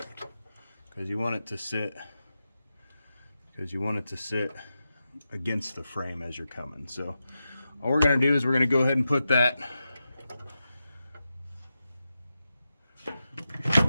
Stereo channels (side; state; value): both; inverted; correlation -0.90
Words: Because you want it to sit against the frame as you're coming. So all we're going to do is we're going to go ahead and put